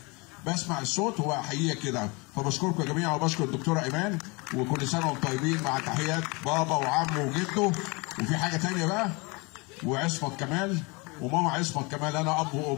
بسمع الصوت واحييه كده. فبشكركم يا جميعا، وبشكر الدكتوره ايمان، وكل سنه وانتم طيبين، مع تحيات بابا وعمه وجده. وفي حاجه ثانيه بقى، وعصمت كمال وماما عصمت كمال، انا اب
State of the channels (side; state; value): right; quieter; 27.9 dB